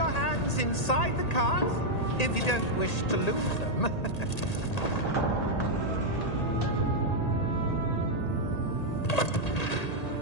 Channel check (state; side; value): late; right; 1.8 ms